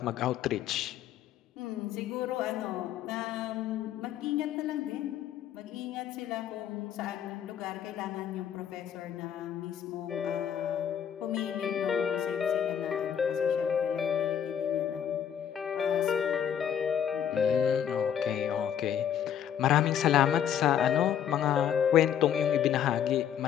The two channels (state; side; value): quieter; right; 9.2 dB